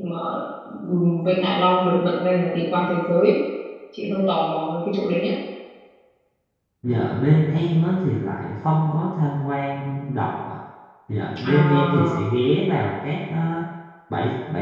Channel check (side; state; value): both; identical; correlation 1.00